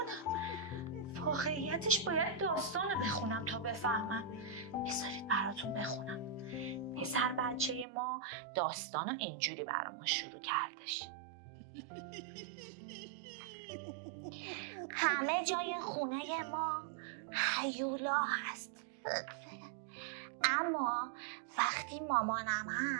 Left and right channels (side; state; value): left; drops out; at 7.9 s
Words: واقعیتش باید داستانو بخونم تا بفهمم. بذارید براتون بخونم. پسر بچه ما داستانو اینجوری برامون شروع کردش. همه جای خونه ما هیولا هست، اما وقتی مامانم